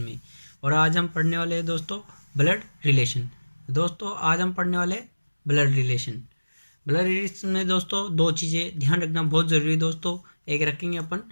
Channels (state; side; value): inverted; both; correlation -1.00